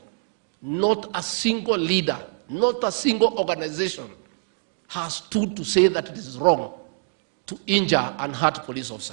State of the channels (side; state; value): left; silent; digital silence